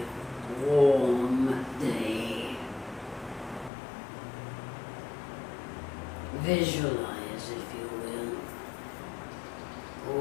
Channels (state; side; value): drops out; right; at 3.7 s